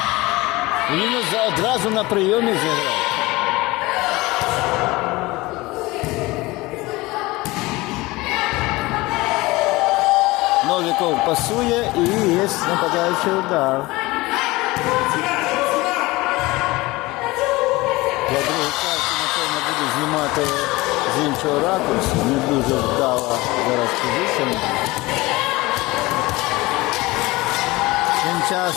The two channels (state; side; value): quieter; right; 21.1 dB